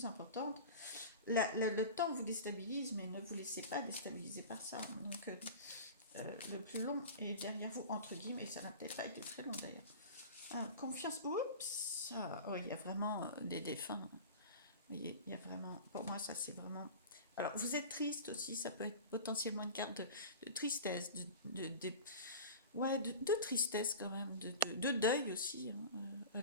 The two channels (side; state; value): both; inverted; correlation -0.34